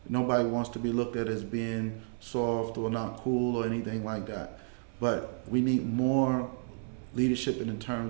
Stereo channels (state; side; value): silent; left; 57 dB below the other